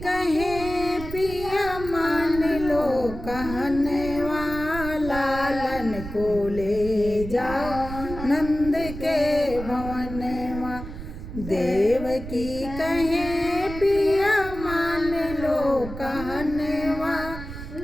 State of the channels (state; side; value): noise; right; rumble, 10 dB below the sound